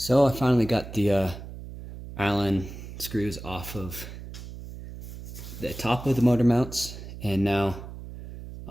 I finally got the Allen screws off of the top of the motor mounts, and now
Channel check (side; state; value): right; noise; hum, 12 dB below the sound